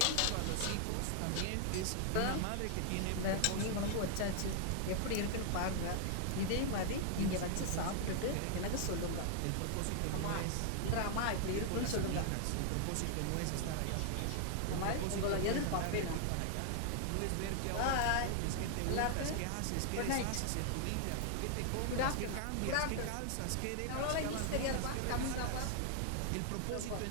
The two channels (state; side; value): different; both; correlation 0.00